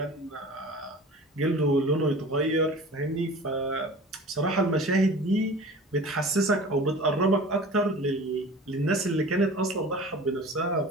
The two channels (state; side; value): normal; both; correlation 0.40